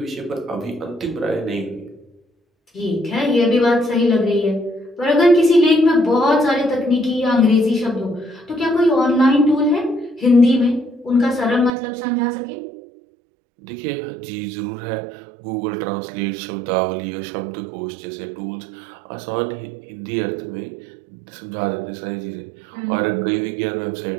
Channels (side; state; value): left; drops out; at 11.7 s